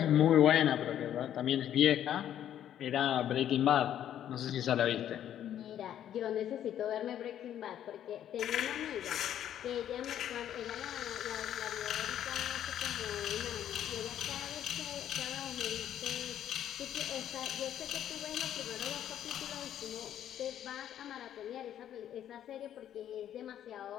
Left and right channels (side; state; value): right; quieter; 10.7 dB